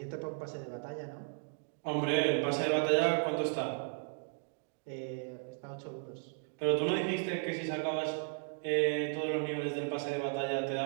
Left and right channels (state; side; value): silent; left; 54 dB below the other